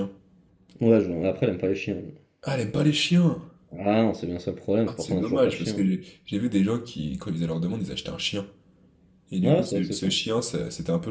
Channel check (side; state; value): both; identical; correlation 1.00